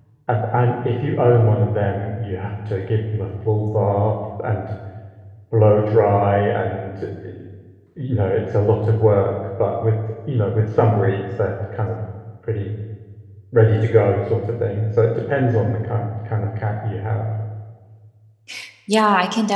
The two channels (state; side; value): identical; both; correlation 1.00